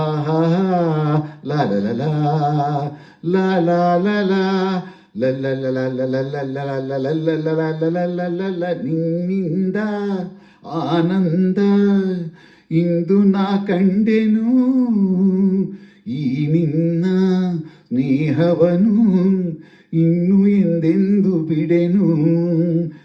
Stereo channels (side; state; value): both; identical; correlation 1.00